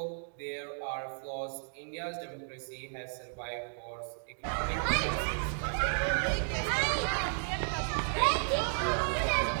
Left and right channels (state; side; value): silent; left; digital silence